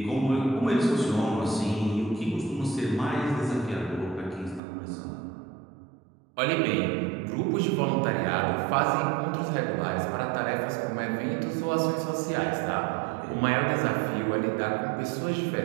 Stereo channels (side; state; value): left; drops out; at 4.6 s